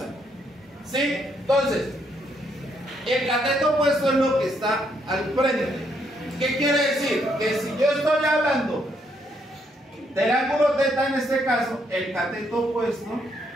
¿Sí? Entonces, el cateto opuesto es lo que está al frente. ¿Qué quiere decir? Que si yo estoy hablando del ángulo θ en este caso, el cateto opuesto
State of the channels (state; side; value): normal; both; correlation 0.74